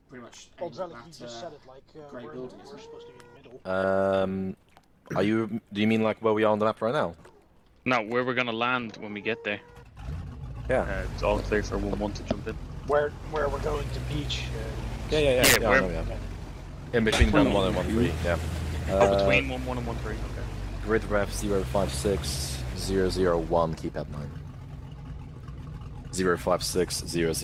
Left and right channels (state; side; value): identical; both; correlation 1.00